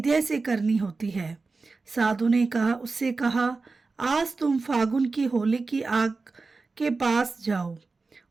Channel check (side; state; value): left; quieter; 4.0 dB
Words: से करनी होती है। साधु ने उससे कहा, आज तुम फागुन की होली की आग के पास जाओ